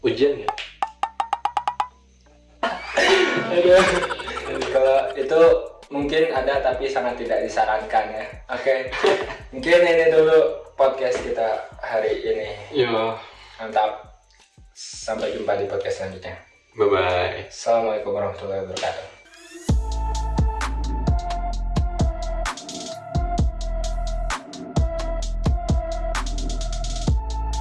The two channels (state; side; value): identical; both; correlation 1.00